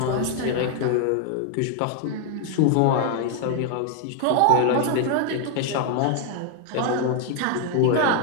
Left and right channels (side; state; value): both; different; correlation 0.00